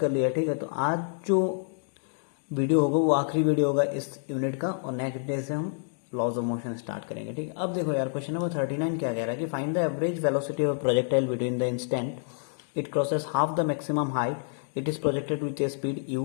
लिया। ठीक है, तो आज जो वीडियो होगा वो आखिरी वीडियो होगा इस यूनिट का, और नेक्स्ट डे से हम लॉज ऑफ मोशन स्टार्ट करेंगे। ठीक है, अब देखो यार, क्वेश्चन नंबर 39 क्या कह रहा है कि find the average velocity of projectile between the instant it crosses half the maximum height it is projected with a speed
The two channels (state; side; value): silent; right; digital silence